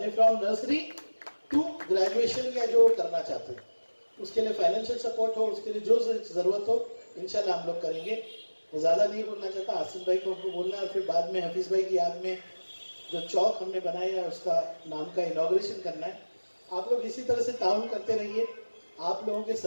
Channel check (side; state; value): both; inverted; correlation -1.00